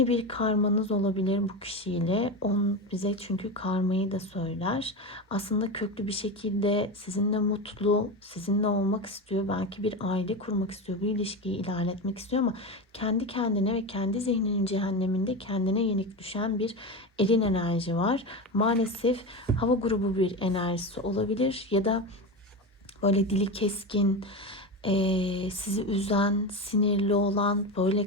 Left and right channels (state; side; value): normal; both; correlation 0.21